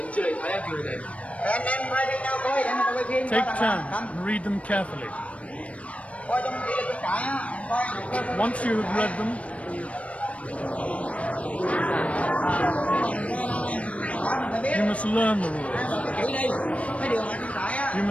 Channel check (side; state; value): right; late; 0.064 ms